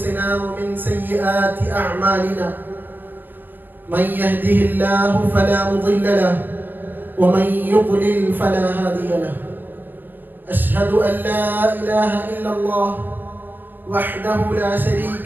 ومن سيئات أعمالنا من يهده الله فلا مضل له ومن يضلل فلا هادي له أشهد أن لا إله إلا الله وحده لا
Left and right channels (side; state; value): left; late; 0.091 ms